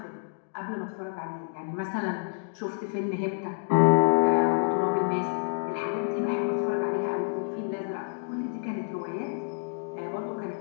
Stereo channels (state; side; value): silent; right; digital silence